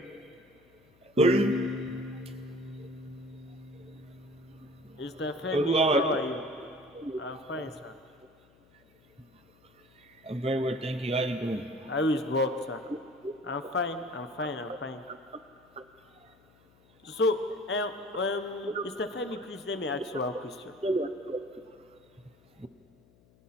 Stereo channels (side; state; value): left; noise; hum, 30 dB below the sound